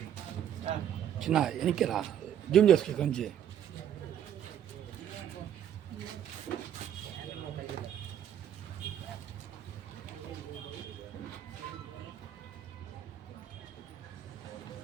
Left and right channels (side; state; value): left; quieter; 9.9 dB